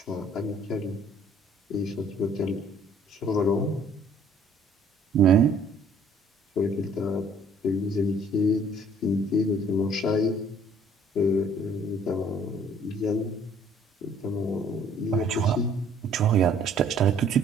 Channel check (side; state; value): both; normal; correlation 0.58